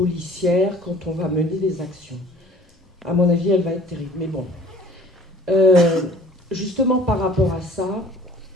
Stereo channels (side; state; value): both; normal; correlation 0.50